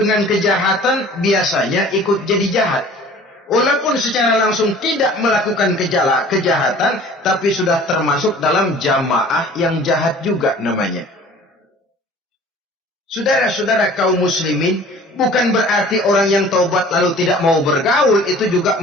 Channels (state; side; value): normal; both; correlation 0.48